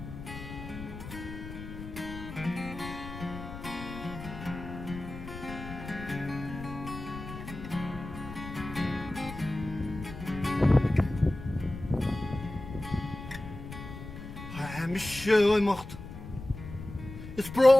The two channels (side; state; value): left; noise; rumble, 11 dB below the sound